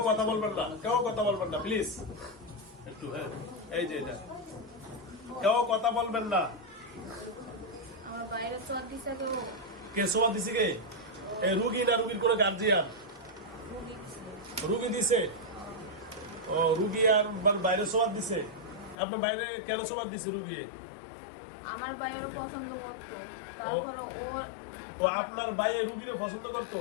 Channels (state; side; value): drops out; right; at 18.9 s